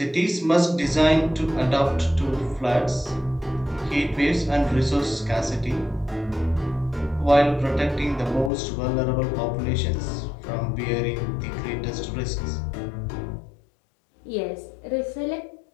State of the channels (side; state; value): right; drops out; at 8.5 s